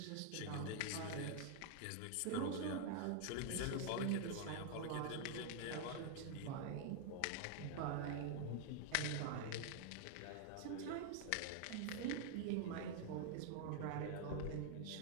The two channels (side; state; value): both; different; correlation 0.00